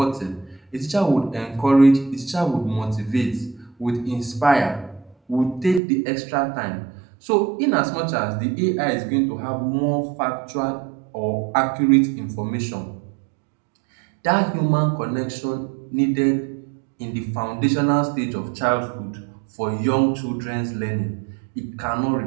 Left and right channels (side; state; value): left; drops out; at 5.8 s